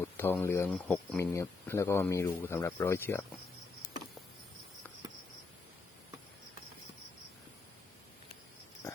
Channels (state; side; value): quieter; right; 4.1 dB